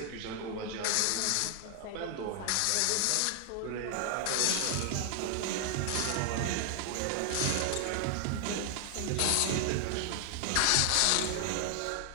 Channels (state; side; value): different; both; correlation 0.00